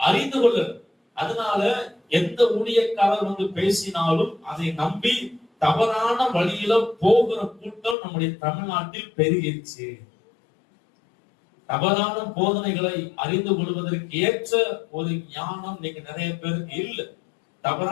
அறிந்து கொள்ள. அதனால எந்த ஊழியக்காரர் வந்து பேசினாலும் அதை நம்பி தவறான வழியில போகிற கூட்டம் நம்முடைய தமிழ்நாட்டில் பெருகிடுச்சு. தவறான போதனைகளை அறிந்து கொள்வதற்கு ஏற்ற ஒரு ஞானம் நீங்க நிறைய பேருக்கு இல்லை.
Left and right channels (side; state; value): right; drops out; at 8.0 s